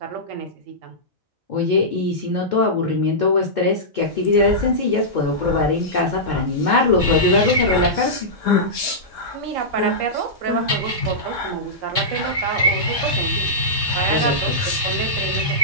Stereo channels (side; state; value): both; normal; correlation -0.14